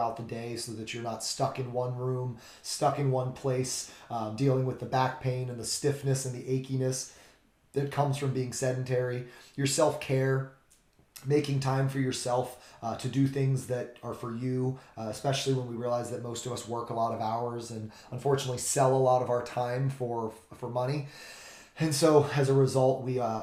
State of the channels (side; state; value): both; identical; correlation 1.00